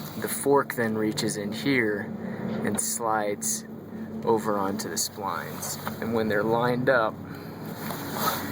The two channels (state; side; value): identical; both; correlation 1.00